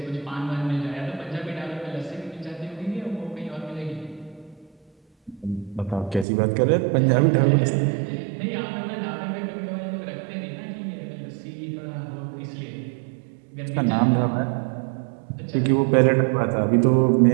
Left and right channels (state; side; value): drops out; left; at 6.2 s